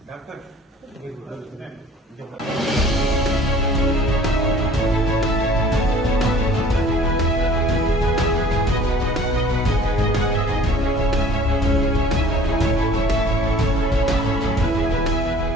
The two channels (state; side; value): normal; both; correlation 0.51